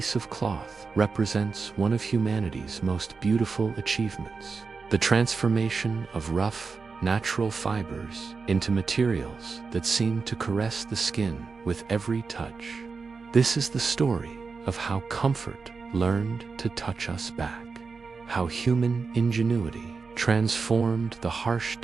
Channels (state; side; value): quieter; left; 4.7 dB